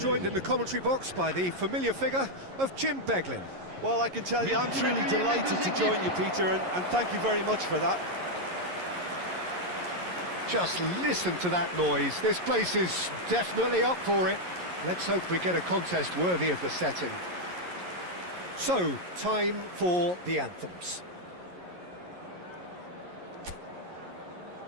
in the commentary box by the familiar figure of Jim Beglin. Well, I can tell you, I'm truly delighted to join you, Peter, and thank you very much for that. Just listen to that noise. This place is definitely up for it. Let's hope we get a contest worthy of the setting. So, time for the anthems.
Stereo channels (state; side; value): late; left; 11 ms